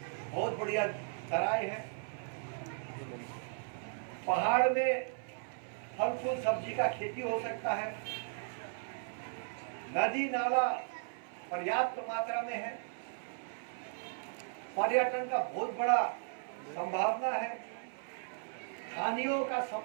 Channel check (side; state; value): left; silent; 54 dB below the other